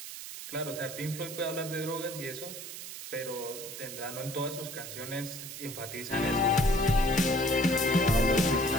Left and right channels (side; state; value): right; noise; hiss, 10 dB below the sound